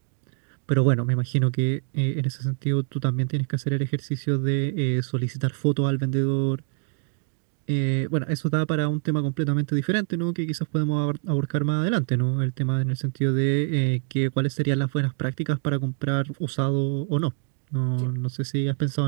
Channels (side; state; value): left; silent; 62 dB below the other